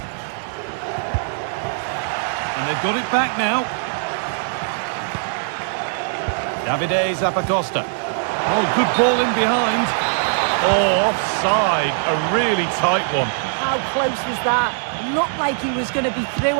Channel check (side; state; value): left; silent; digital silence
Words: And they've got it back now. Davide Zappacosta. Oh, good ball in behind. Oh, offside. A really tight one. How close was that? Looked like he was going to be through